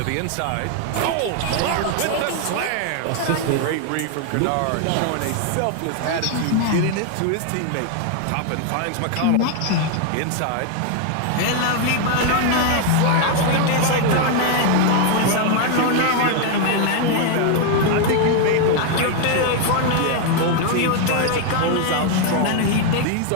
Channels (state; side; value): different; both; correlation 0.00